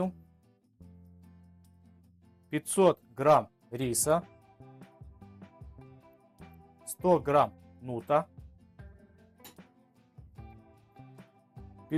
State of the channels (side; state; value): both; identical; correlation 1.00